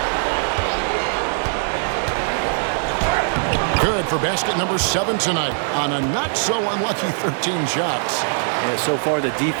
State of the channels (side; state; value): left; silent; digital silence